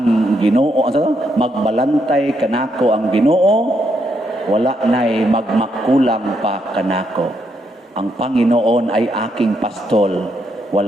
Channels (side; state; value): both; normal; correlation 0.77